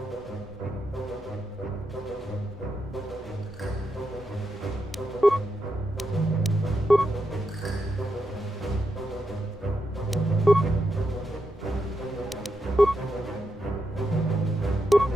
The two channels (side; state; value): both; normal; correlation 0.84